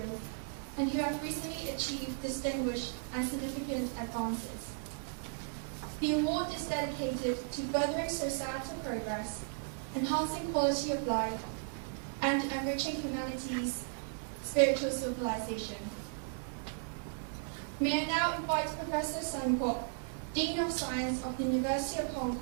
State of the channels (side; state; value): left; silent; digital silence